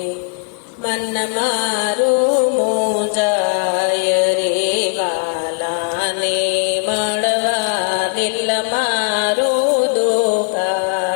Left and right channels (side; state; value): right; quieter; 37.1 dB